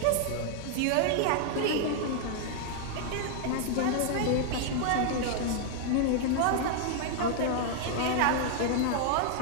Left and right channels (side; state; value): both; different; correlation 0.00